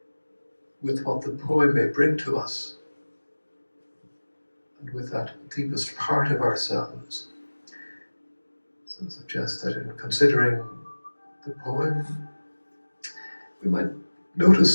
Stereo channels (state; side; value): inverted; both; correlation -1.00